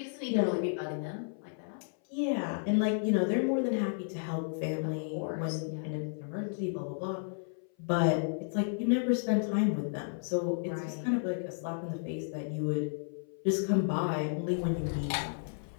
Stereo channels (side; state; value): right; silent; 56 dB below the other